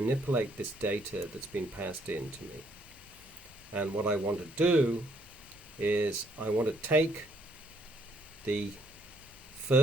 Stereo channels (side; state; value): both; normal; correlation 0.69